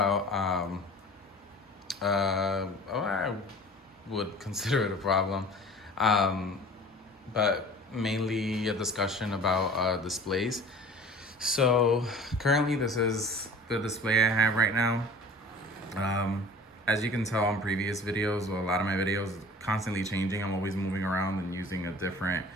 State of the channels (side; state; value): both; normal; correlation 0.43